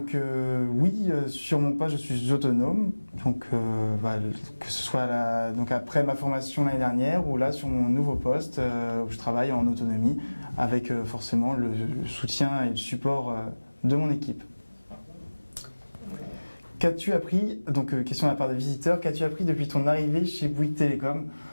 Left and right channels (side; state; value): both; inverted; correlation -1.00